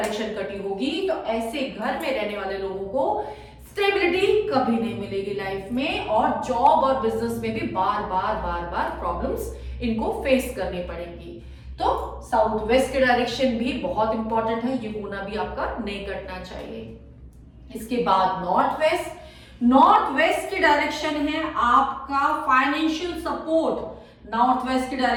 कटी होगी तो ऐसे घर में रहने वाले लोगों को स्टेबिलिटी कभी नहीं मिलेगी लाइफ में, और जॉब और बिजनेस में भी बार बार प्रॉब्लम्स इनको फेस करनी पड़ेंगी। तो साउथ वेस्ट की डायरेक्शन भी बहुत इंपॉर्टेंट है, ये कोना भी आपका नहीं कटना चाहिए। इसके बाद नॉर्थ वेस्ट। नॉर्थ वेस्ट की डायरेक्शन है आपका फाइनेंशियल सपोर्ट। नॉर्थ वेस्ट की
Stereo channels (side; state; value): both; identical; correlation 1.00